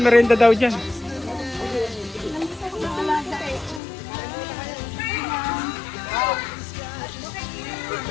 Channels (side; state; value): right; drops out; at 3.8 s